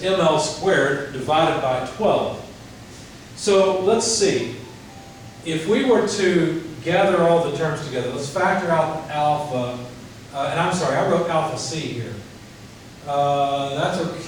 ML squared divided by 12. So let's see. If we were to gather all the terms together, let's factor out alpha, and I'm sorry, I wrote alpha C here. That's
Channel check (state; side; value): identical; both; correlation 1.00